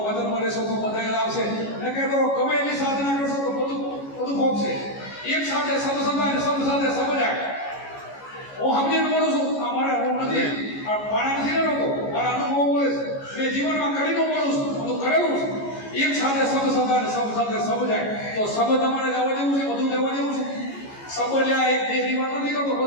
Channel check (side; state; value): right; late; 14 ms